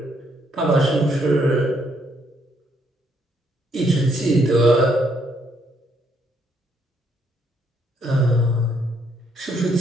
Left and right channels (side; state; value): both; normal; correlation 0.72